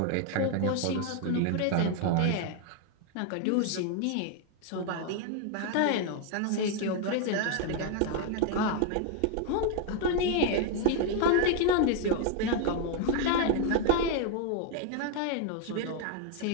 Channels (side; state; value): both; different; correlation 0.00